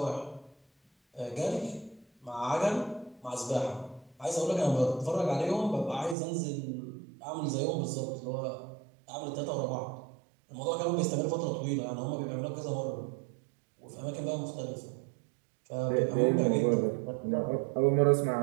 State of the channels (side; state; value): left; drops out; at 6.2 s